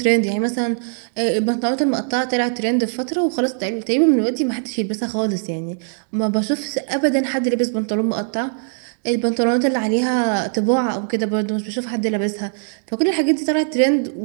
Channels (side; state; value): left; silent; digital silence